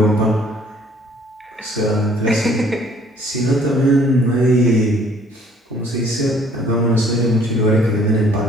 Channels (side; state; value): both; normal; correlation 0.59